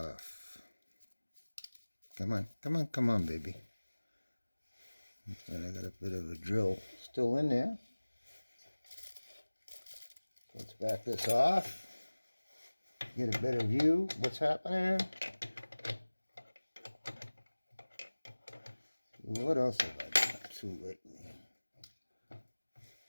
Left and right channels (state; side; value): inverted; both; correlation -1.00